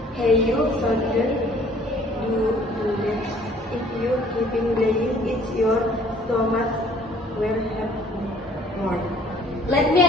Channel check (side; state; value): both; normal; correlation 0.56